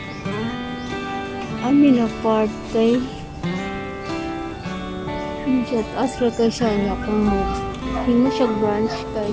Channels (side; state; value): both; identical; correlation 1.00